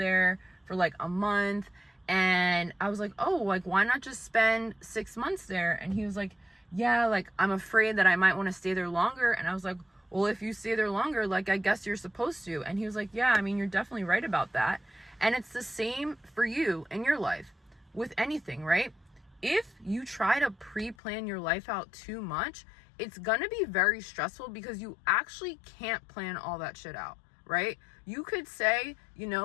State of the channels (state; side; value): drops out; right; at 21.0 s